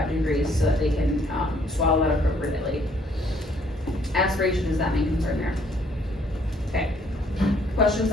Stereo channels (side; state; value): both; normal; correlation 0.64